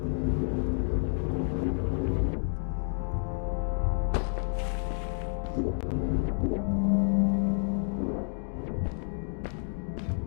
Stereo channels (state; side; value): silent; right; 58 dB below the other